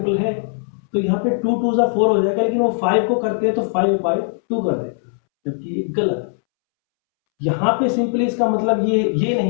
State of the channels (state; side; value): silent; right; 66 dB below the other